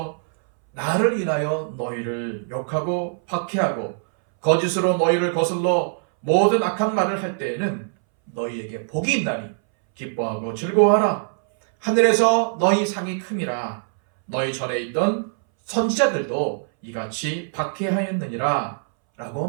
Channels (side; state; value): left; silent; 64 dB below the other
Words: 나를 인하여 너희를 욕하고 박해하고 거짓으로 너희를 거슬러 모든 악한 말을 할 때에는 너희에게 복이 있나니 기뻐하고 즐거워하라. 하늘에서 너희 상이 큼이라. 너희 전에 있던 선지자들도 이같이 박해하였느니라 라고